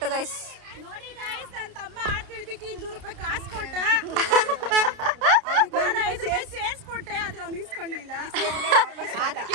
ಗೈಸ್. ನೋಡಿ ಗೈಸ್, ನನ್ನ ತಮ್ಮ ಆಡ್ತಿದ್ದಕ್ಕೆ 200 ರೂಪಾಯಿ ಕಾಸು ಕೊಟ್ಟ, 5 ರೂಪಾಯಿ ಸೇರಿಸ್ಕೊಟ್ಟೆ, ಆದ್ರೆ ಅವ್ನು ಇಸ್ಕೊಂಡಿಲ್ಲ.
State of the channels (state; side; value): late; left; 30 ms